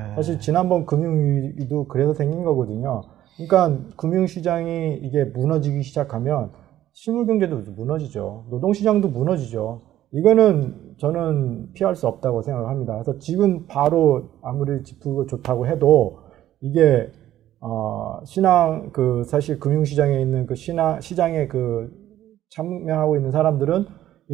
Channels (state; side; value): quieter; left; 12.9 dB